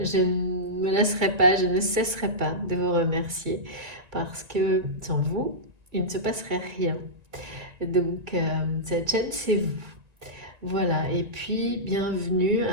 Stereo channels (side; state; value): left; late; 1.9 ms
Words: ne me laisserai pas, je ne cesserai pas de vous remercier parce que sans vous, il ne se passerait rien. Donc, cette chaîne, c'est vous. Voilà, et puis bienvenue